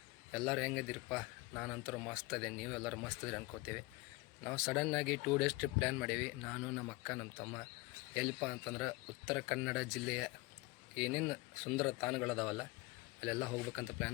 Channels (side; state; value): right; quieter; 23.1 dB